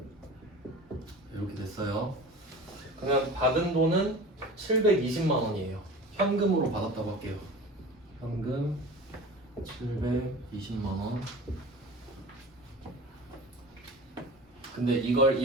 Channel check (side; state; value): both; normal; correlation 0.37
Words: 이렇게 됐어요. 그러면 받은 돈은 720만 원이에요. 현금으로 받았다고 할게요. 현금 720만 원. 근데 이걸